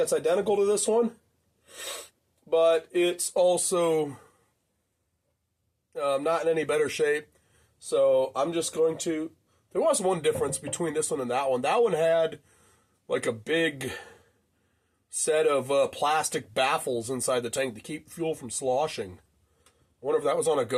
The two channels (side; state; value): both; identical; correlation 1.00